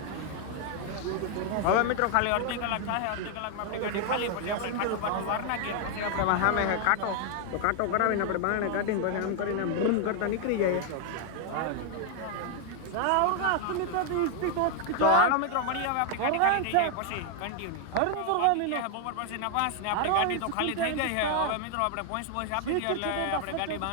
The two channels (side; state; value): both; different; correlation 0.00